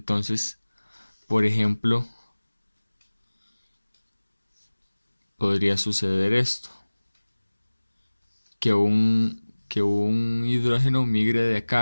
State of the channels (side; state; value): both; inverted; correlation -1.00